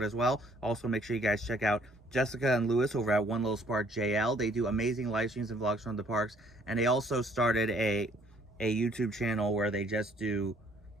as well. Also, make sure you guys check out Jessica and Lewis over at One Little Spark JL. They do amazing live streams and vlogs from the parks. And they also started a YouTube channel where they just do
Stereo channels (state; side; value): normal; both; correlation 0.62